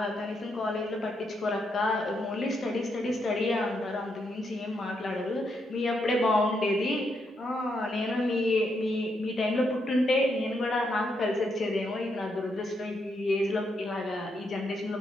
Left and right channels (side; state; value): both; normal; correlation 0.79